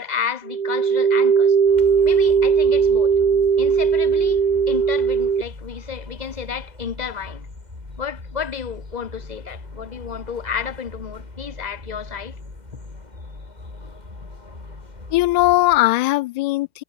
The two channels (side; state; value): left; late; 1.9 ms